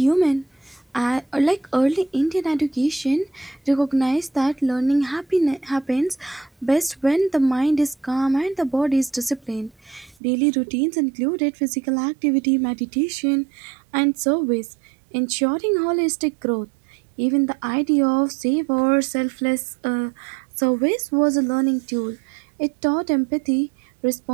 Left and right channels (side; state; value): left; drops out; at 10.2 s